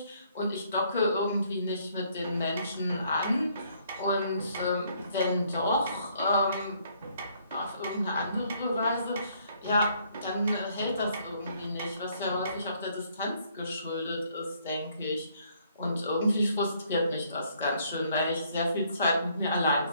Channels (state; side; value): inverted; both; correlation -0.66